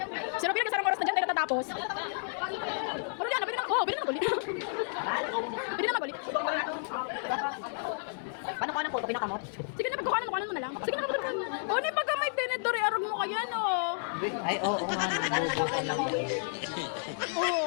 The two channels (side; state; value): right; silent; digital silence